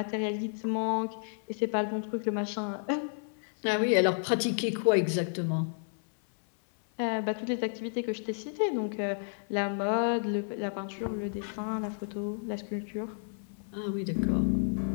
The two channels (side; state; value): right; silent; 57 dB below the other